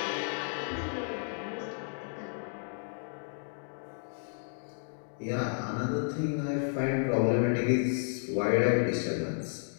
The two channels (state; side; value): silent; right; digital silence